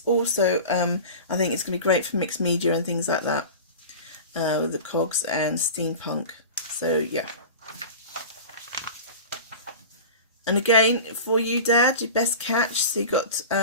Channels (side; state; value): both; inverted; correlation -0.34